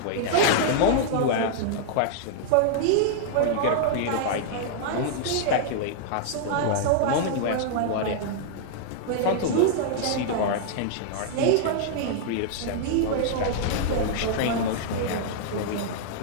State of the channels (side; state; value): both; different; correlation -0.01